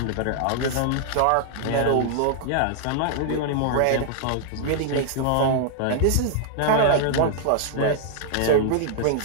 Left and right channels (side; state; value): both; different; correlation -0.01